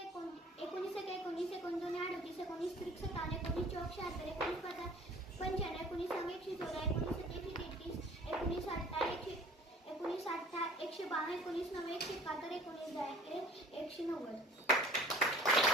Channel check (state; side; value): normal; both; correlation 0.48